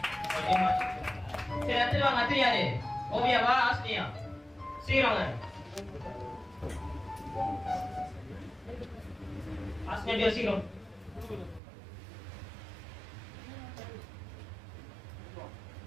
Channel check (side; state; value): left; drops out; at 11.6 s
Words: சரி, அடுத்து வாங்க. அடுத்து யாரு? ஓவியாவா ஆஸ்திரியா? சீக்கிரம் ஆஸ்திரியா சீக்கிரம்.